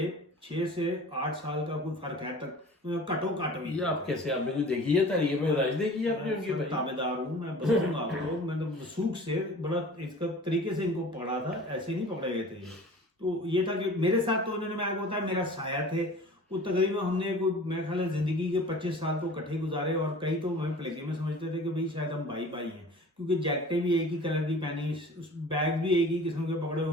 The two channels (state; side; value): normal; both; correlation 0.43